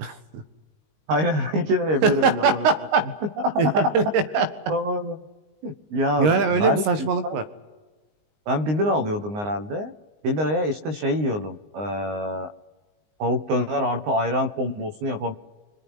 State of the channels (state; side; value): late; left; 19 ms